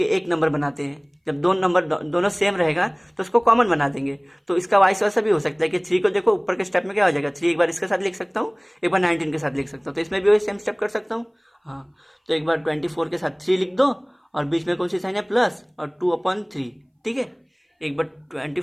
एक नंबर बनाते हैं, जब 2 नंबर दोनों सेम रहेगा तो उसको कॉमन बना देंगे। तो इसका वाइस वैसा भी हो सकता है कि 3 को देखो ऊपर के स्टेप में क्या हो जाएगा, 3 एक बार इसके साथ लिख सकता हूँ, एक बार 19 के साथ लिख सकता हूँ, तो इसमें भी वही सेम स्टेप कर सकता हूँ। हाँ, तो एक बार 24 के साथ 3 लिख दो, और बीच में कौन सी साइन है, प्लस, और 2/3। ठीक है, एक बार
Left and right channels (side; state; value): both; identical; correlation 1.00